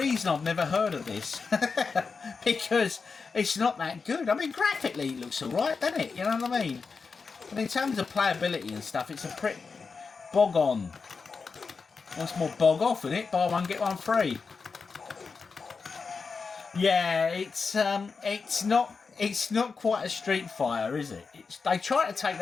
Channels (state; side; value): quieter; right; 4.9 dB